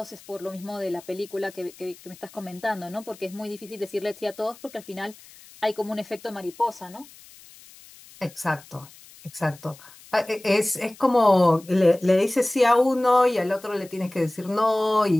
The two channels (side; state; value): left; noise; hiss, 22 dB below the sound